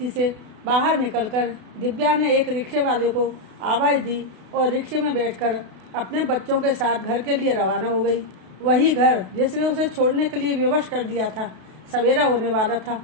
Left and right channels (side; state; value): left; late; 32 ms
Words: से बाहर निकलकर दिव्या ने एक रिक्शे वाले को आवाज़ दी और रिक्शे में बैठकर अपने बच्चों के साथ घर के लिए रवाना हो गई। वही घर जिसने उसे छोड़ने के लिए विवश कर दिया था। सवेरा होने वाला था।